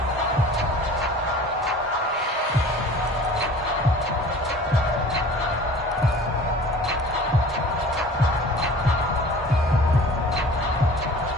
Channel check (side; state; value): both; normal; correlation 0.44